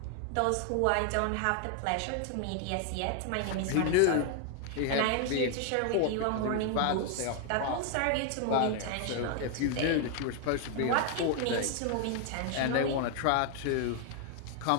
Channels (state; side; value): different; both; correlation 0.00